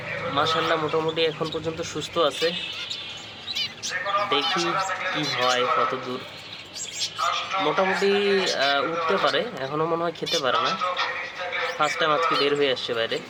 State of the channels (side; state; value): both; identical; correlation 1.00